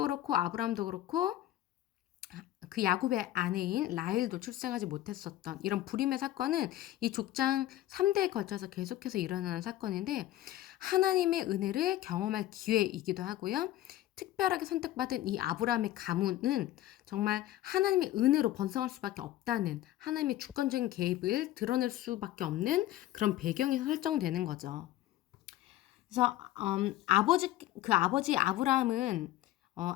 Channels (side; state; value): right; quieter; 14.4 dB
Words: 그렇고 아브라함도 그렇고 그 야곱의 아내인 라헬도 출생하지 못했었던 이런 불임의 사건은 이 족장 3대에 걸쳐서 계속해서 일어나는 사건인데 하나님의 은혜를 경험할 기회이기도 하고요. 특별하게 선택받은 이 아브라함의 가문은 정말 하나님의 은혜로 번성할 수밖에 없다는 하나님의 주권적인 개입을 드러낼 수밖에 없는 그런 배경이 설정되는 거죠. 그래서 아버지 아브라함은